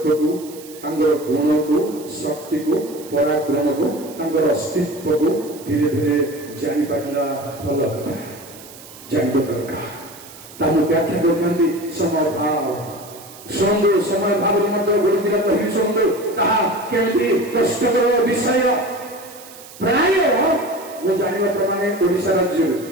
ତାଙ୍କର ଗୁଣକୁ, ଶକ୍ତିକୁ, ପରାକ୍ରମକୁ, ତାଙ୍କର ଅସ୍ତିତ୍ୱକୁ ଧୀରେ ଧୀରେ ଜାଣିପାରିଲା ଭଲ କଥା, ଜାଣିବା ଦରକାର। ତାକୁ ବ୍ୟାଖ୍ୟା କରିଥାନ୍ତି ସମୟ ଭାବ। ଶୁଣନ୍ତୁ, ସମୟ ଭାବରେ ମଧ୍ୟ ଗୋଟେ ଦିନ କହିବି ଶୁଣନ୍ତୁ, ତାହା କେମିତି କଷ୍ଟକର ବିଷୟ। ପ୍ରାୟ ମୁଁ ଜାଣିବା ପ୍ରମାଣେ ଓଡ଼ିଶା ରାଜ୍ୟରେ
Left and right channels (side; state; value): right; noise; hiss, 18 dB below the sound